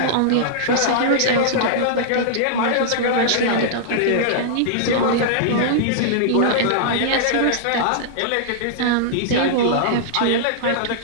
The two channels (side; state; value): both; different; correlation -0.02